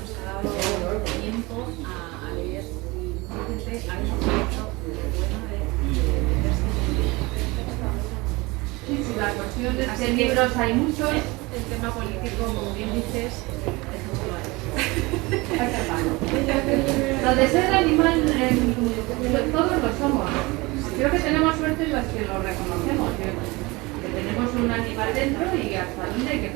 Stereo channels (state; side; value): quieter; left; 23.6 dB